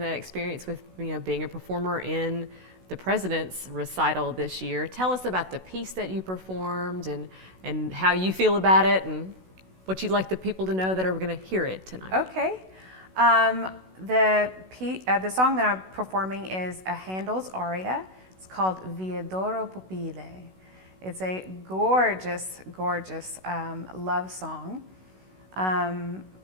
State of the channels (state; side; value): late; left; 16 ms